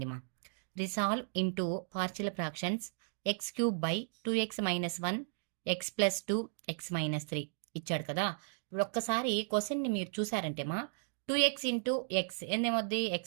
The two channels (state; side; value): silent; left; digital silence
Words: మా. Resolve into partial fractions X cube by 2x-1 X plus 2 x-3 ఇచ్చాడు కదా. ఇప్పుడు ఒక్కసారి క్వశ్చన్ని మీరు చూసారంటే మా 2x ఇంటూ ఎక్స్ ఎందేమవుద్ది?